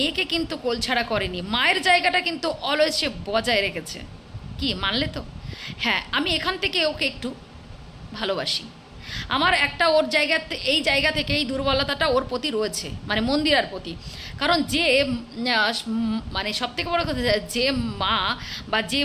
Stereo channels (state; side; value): identical; both; correlation 1.00